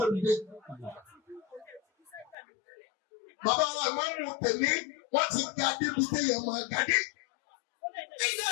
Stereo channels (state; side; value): drops out; right; at 2.4 s